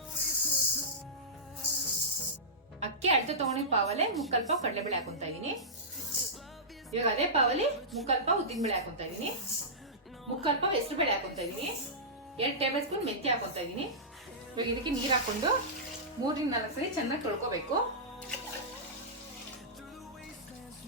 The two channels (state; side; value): normal; both; correlation -0.16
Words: ಅಕ್ಕಿ ಅಳತೆ ತಗೊಂಡಿದ್ ಪಾವಲ್ಲೇ 3/4 ಪಾವ್ ಕಡಲೆಬೇಳೆ ಹಾಕೊಂತಾ ಇದೀನಿ. ಇವಾಗ ಅದೇ ಪಾವಲ್ಲಿ 3/4 ಪಾವ್ ಉದ್ದಿನಬೇಳೆ ಹಾಕೊಂತಾ ಇದೀನಿ. 3/4 ಪಾವ್ ಹೆಸರುಬೇಳೆ ಹಾಕೊಂತಾ ಇದೀನಿ. 2 ಟೇಬಲ್ ಸ್ಪೂನ್ ಮೆಂತ್ಯ ಹಾಕೊಂತಾ ಇದೀನಿ. ಇವಾಗ ಇದಕ್ಕೆ ನೀರ್ ಹಾಕೊಂಡು 3-4 ಸರಿ ಚೆನ್ನಾಗಿ ತೊಳ್ಕೋಬೇಕು.